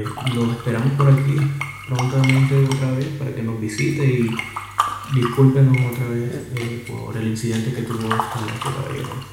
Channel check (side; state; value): both; identical; correlation 1.00